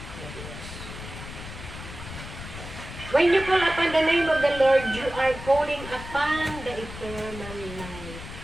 When you call upon the name of the Lord, you are calling upon the eternal life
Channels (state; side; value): noise; left; rumble, 11 dB below the sound